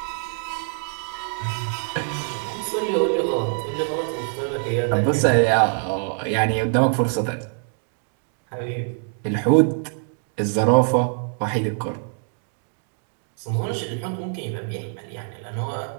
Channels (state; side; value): silent; left; 59 dB below the other